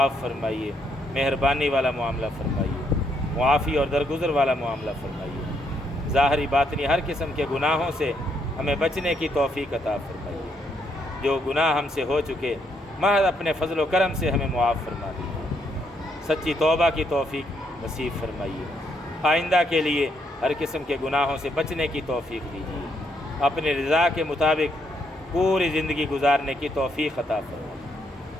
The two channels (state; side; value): normal; both; correlation 0.75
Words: فرمائیے، مہربانی والا معاملہ فرمائیے، معافی اور درگزر والا معاملہ فرمائیے، ظاہری باطنی ہر قسم کے گناہوں سے ہمیں بچنے کی توفیق عطا فرمائیے، جو گناہ ہم سے ہو چکے محض اپنے فضل و کرم سے ہمیں معاف فرما دیجیے، سچی توبہ کی توفیق نصیب فرمائیے، آئندہ کے لیے ہر قسم کے گناہوں سے بچنے کی توفیق دیجیے، اپنی رضا کے مطابق پوری زندگی گزارنے کی توفیق عطا فرمائیے۔